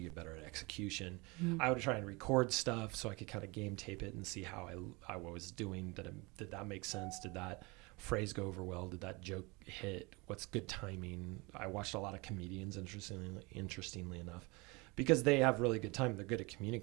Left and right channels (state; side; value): quieter; left; 26.2 dB